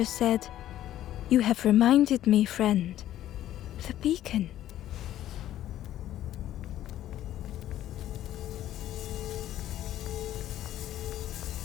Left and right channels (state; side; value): quieter; right; 12.7 dB